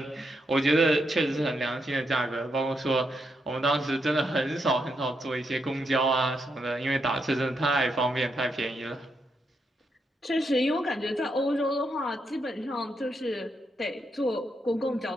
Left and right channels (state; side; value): normal; both; correlation 0.81